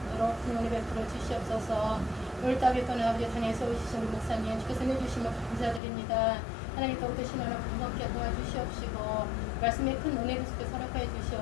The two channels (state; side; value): drops out; right; at 5.8 s